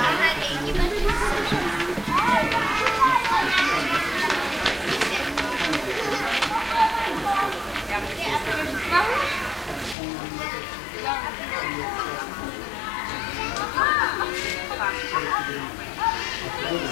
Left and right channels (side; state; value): right; drops out; at 10.0 s